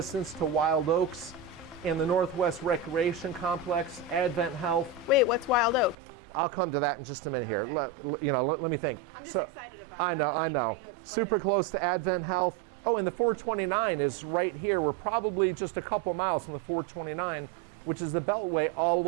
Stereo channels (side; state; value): left; drops out; at 6.0 s